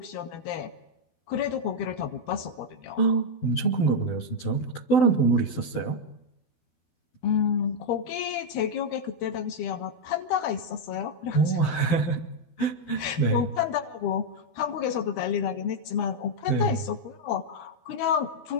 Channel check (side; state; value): right; late; 12 ms